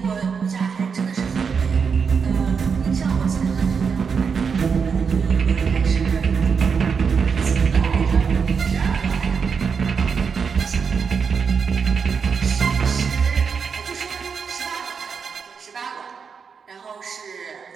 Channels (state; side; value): quieter; left; 6.0 dB